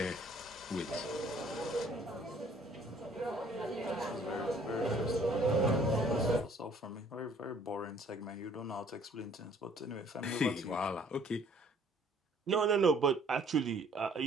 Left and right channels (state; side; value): normal; both; correlation 0.58